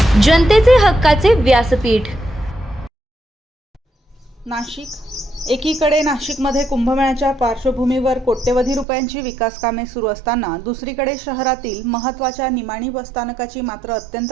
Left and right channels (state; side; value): drops out; left; at 8.8 s